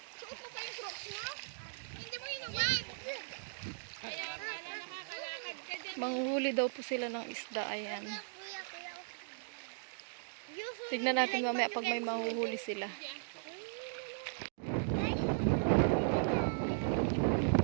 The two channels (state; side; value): silent; left; digital silence